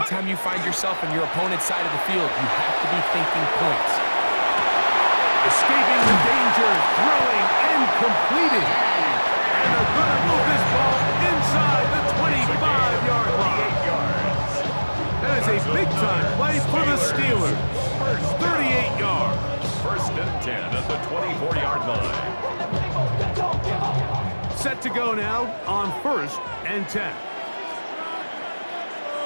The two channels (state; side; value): inverted; both; correlation -1.00